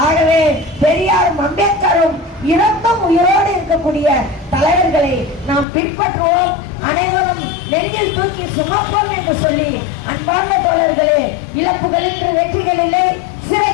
ஆகவே பெரியாரும் அம்பேத்கரும் இறந்தும் உயிரோடு இருக்கக்கூடிய தலைவர்களை நாம் பின்பற்றுவோம். அனைவரும் நெஞ்சில் தூக்கி சுமப்போம் என்று சொல்லி அன்பார்ந்த தோழர்களே, இழப்புகள் இன்று வெற்றிகள் இல்லை,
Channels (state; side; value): drops out; right; at 5.7 s